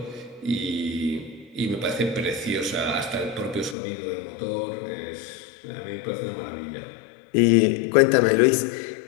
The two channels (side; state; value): right; drops out; at 3.8 s